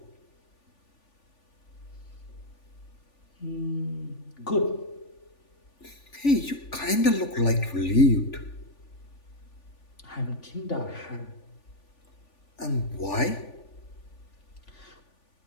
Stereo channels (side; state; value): right; late; 3.5 ms